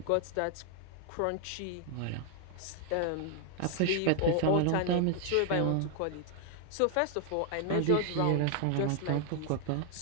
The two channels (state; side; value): different; both; correlation 0.00